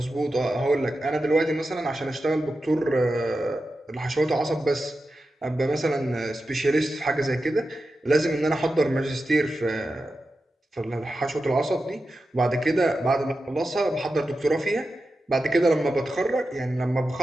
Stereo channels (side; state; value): both; normal; correlation 0.91